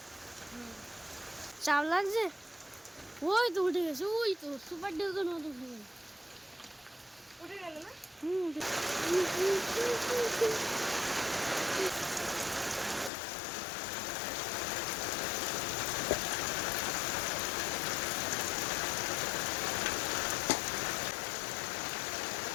চাপ লাগছে? ওই তো উঠে গেছে, ওই তো সুপার ডিউকের মতো উঠে গেল। উঠে গেল না? উঠে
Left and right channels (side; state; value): right; drops out; at 13.1 s